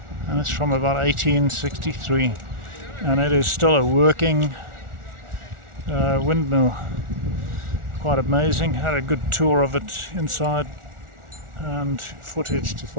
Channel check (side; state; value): left; late; 1.4 ms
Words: and it's from about 1863, and it is still a working windmill. Quite amazing. Had a good tour of it inside and footage to